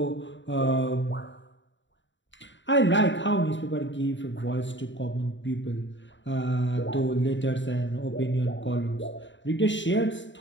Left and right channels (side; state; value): right; late; 0.54 ms